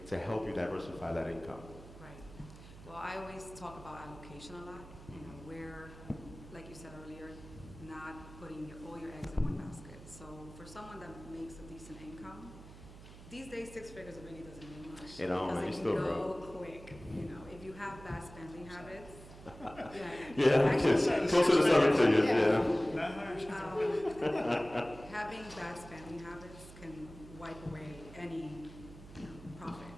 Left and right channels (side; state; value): right; noise; hum, 17 dB below the sound